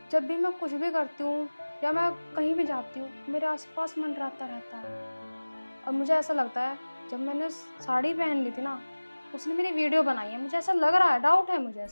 जब भी मैं कुछ भी करती हूँ या मैं कहीं भी जाती हूँ, मेरे आसपास मंडराता रहता है। और मुझे ऐसा लगता है जब मैंने साड़ी पहन ली थी ना, उसने मेरी वीडियो बनाई है। मुझे ऐसा लग रहा है, डाउट है मुझे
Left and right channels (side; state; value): both; inverted; correlation -1.00